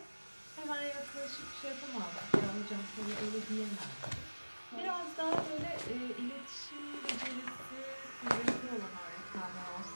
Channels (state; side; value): inverted; both; correlation -1.00